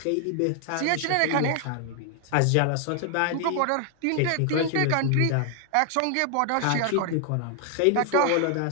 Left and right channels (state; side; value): different; both; correlation 0.00